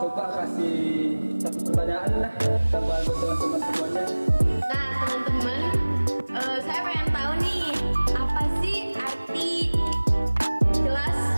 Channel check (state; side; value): inverted; both; correlation -1.00